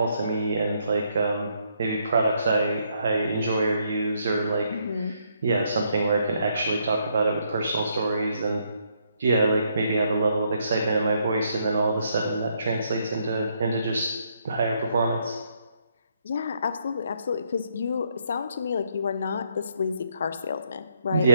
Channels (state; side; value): inverted; both; correlation -0.73